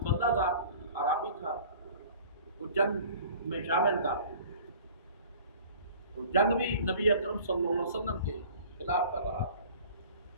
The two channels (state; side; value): inverted; both; correlation -0.46